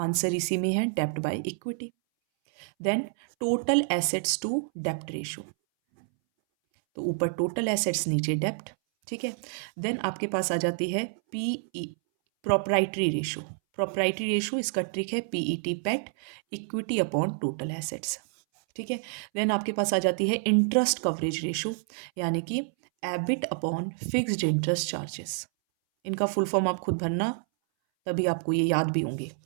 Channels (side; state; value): left; silent; 59 dB below the other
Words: इसी में है, डेप्ट by equity. Then total assets to डेप्ट रेशो, तो ऊपर टोटल एसेट्स नीचे डेप्ट। ठीक है, देन आपके पास आ जाती है P E, proprietary ratio. Proprietary ratio, इसका ट्रिक है पीईटी, पेट, इक्विटी अपॉन टोटल एसेट्स। ठीक है, देन आपके पास आ जाती है इंटरेस्ट कवरेज रेशो, यानी कि EBIT upon fixed interest charges. इनका फुल फॉर्म आप खुद भरना, तभी आपको ये याद भी होंगे।